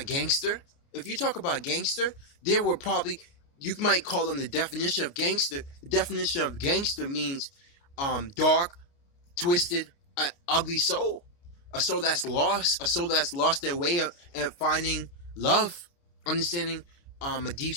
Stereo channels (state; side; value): late; right; 29 ms